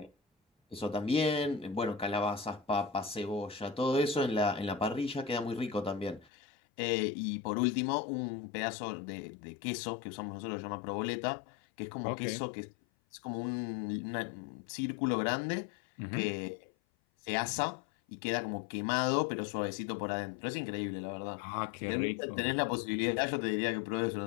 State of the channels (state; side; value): drops out; right; at 6.3 s